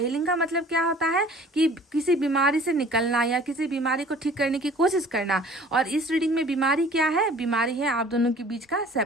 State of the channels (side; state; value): both; normal; correlation 0.49